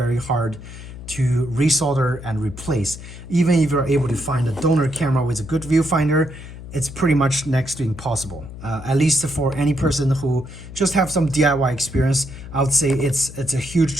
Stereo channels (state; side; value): noise; left; hum, 13 dB below the sound